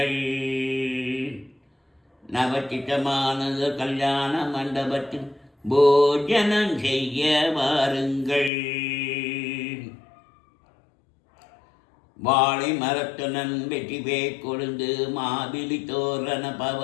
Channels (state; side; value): drops out; right; at 8.5 s